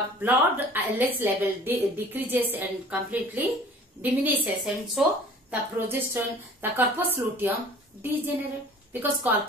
blood LH level decreases and completely diminishes, and so the progesterone, the corpus luteum degenerate, because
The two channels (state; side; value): normal; both; correlation 0.48